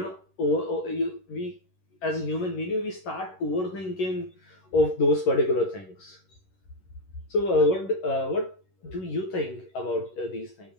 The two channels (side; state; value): right; late; 11 ms